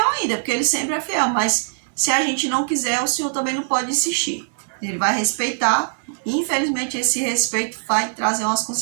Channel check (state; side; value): silent; left; 65 dB below the other